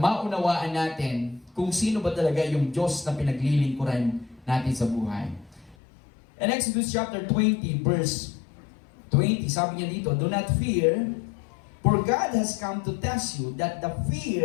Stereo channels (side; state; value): right; drops out; at 5.8 s